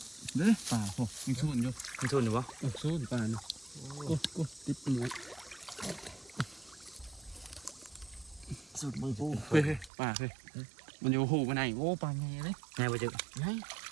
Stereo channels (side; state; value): left; drops out; at 9.9 s